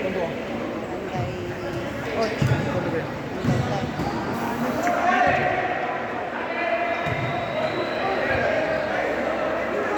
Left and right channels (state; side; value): identical; both; correlation 1.00